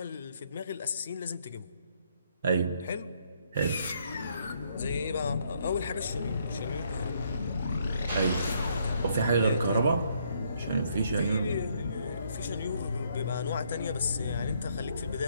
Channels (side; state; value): both; inverted; correlation -0.70